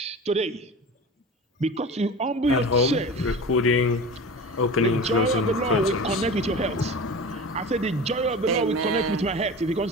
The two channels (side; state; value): both; normal; correlation 0.33